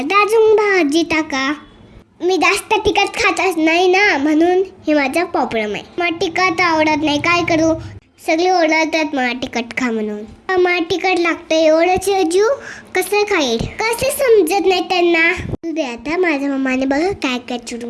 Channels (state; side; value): identical; both; correlation 1.00